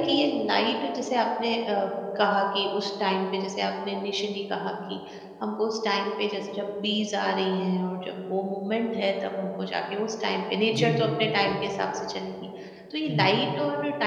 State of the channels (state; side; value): identical; both; correlation 1.00